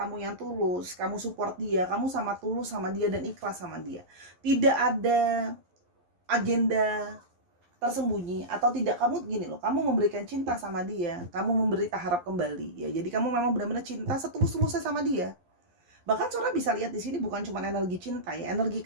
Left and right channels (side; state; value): left; late; 11 ms